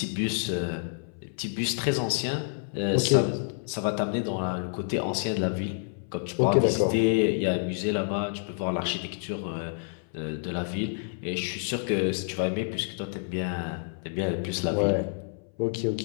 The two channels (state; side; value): silent; right; 59 dB below the other